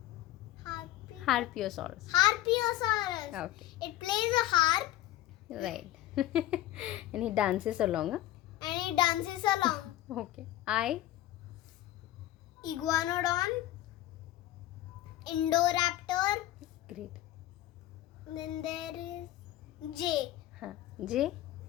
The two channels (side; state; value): right; quieter; 14.4 dB